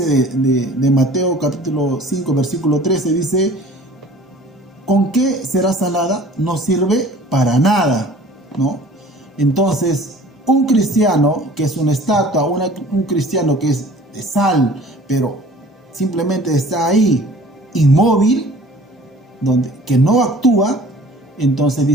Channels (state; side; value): normal; both; correlation 0.48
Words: de Mateo capítulo 5, versículo 13, dice: ¿con qué será salada? No sirve para nada, ¿no? Entonces, un cristiano que es una estatua, un cristiano que es de sal, pero simplemente está ahí, inmóvil, que no actúa, entonces